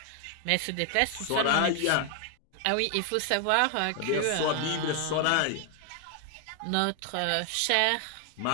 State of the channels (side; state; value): both; different; correlation 0.00